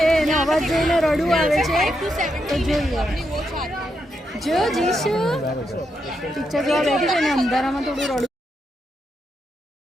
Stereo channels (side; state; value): both; normal; correlation 0.82